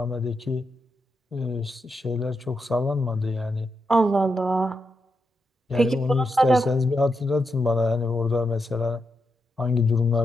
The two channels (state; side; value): normal; both; correlation 0.85